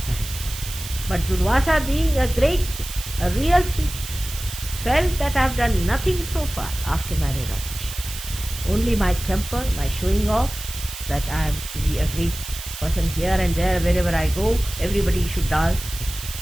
has? But Durvasa, being a real thief, felt that I have done nothing so far after my realization. Only my temper, my showing off, that I am to be a great person here and there, wherever I go, everybody should dance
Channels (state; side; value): noise; right; hiss, 10 dB below the sound